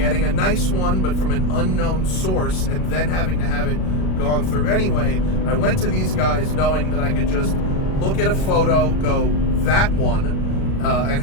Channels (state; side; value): late; right; 37 ms